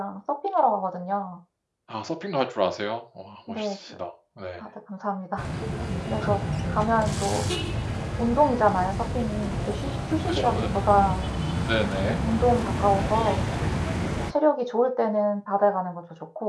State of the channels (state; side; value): identical; both; correlation 1.00